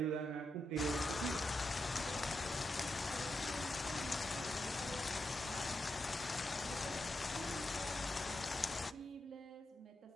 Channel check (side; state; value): both; normal; correlation 0.86